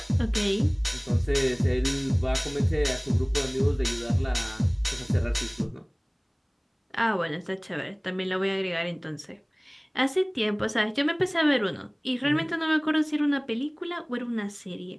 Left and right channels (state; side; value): identical; both; correlation 1.00